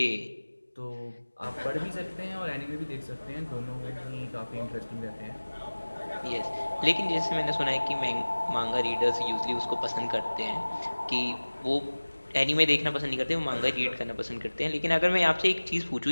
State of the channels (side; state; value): both; inverted; correlation -1.00